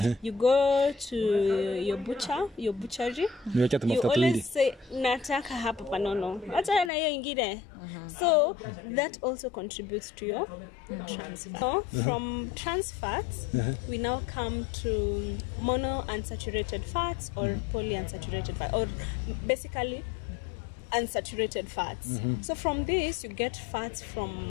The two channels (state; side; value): drops out; right; at 6.9 s